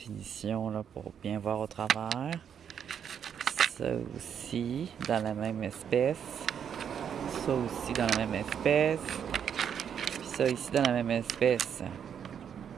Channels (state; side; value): quieter; left; 8.2 dB